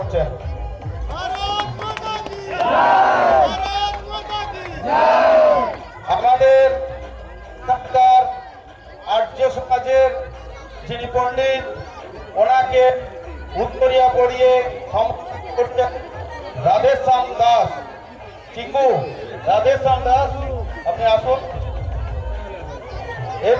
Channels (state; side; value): identical; both; correlation 1.00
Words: আমাদের এখানকার আর্য সমাজের যিনি পণ্ডিত, ওনাকে উত্তরিয়া পড়িয়ে সম্বর্ধনা করছেন রাধেশ্যাম দাস। রাধেশ্যাম দাস আপনি আসুন।